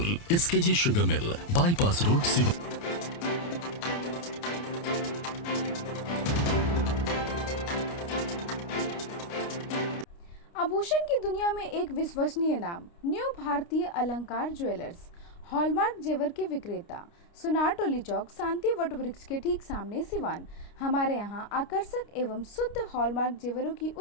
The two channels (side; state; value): right; late; 29 ms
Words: SKG sugar mill bypass road, Siwan. आभूषण की दुनिया में एक विश्वसनीय नाम, न्यू भारतीय अलंकार ज्वेलर्स। हॉलमार्क जेवर के विक्रेता, सुनार टोली चौक, शांति वट वृक्ष के ठीक सामने, सिवान। हमारे यहाँ आकर्षक एवं शुद्ध हॉलमार्क जेवरों की